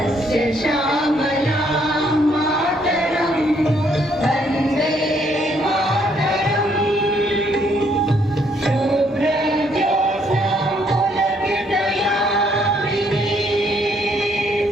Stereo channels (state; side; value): normal; both; correlation 0.69